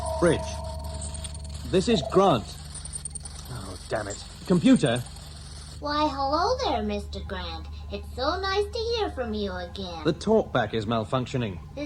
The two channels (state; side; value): identical; both; correlation 1.00